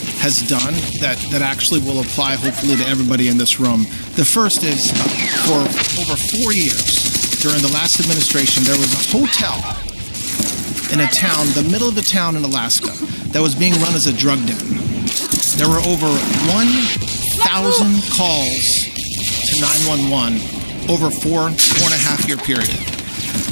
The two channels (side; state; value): both; inverted; correlation -1.00